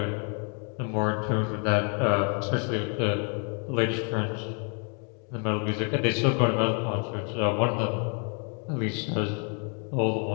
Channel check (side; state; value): right; quieter; 39.0 dB